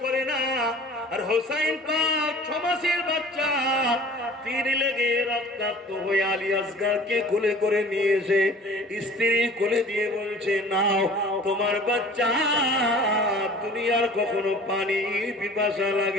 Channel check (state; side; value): normal; both; correlation 0.46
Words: করে না। আর হোসাইন পাক 6 মাসের বাচ্চা, তীর লেগে রক্তাক্ত হয়ে আলী আসগরকে কোলে করে নিয়ে এসে স্ত্রী কোলে দিয়ে বলছে, নাও তোমার বাচ্চা, দুনিয়ার কখনো পানি পিপাসা